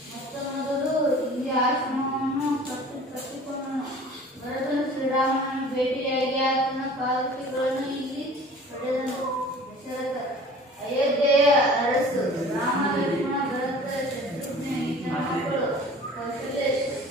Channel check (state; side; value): normal; both; correlation 0.45